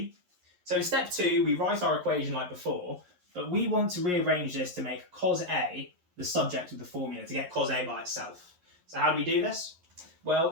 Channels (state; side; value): late; left; 11 ms